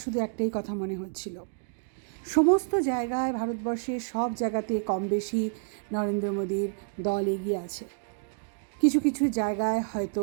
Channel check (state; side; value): silent; left; digital silence